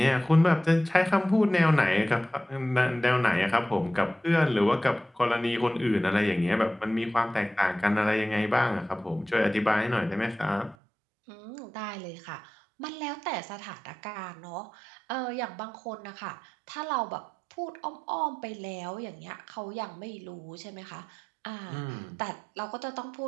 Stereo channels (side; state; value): left; drops out; at 10.8 s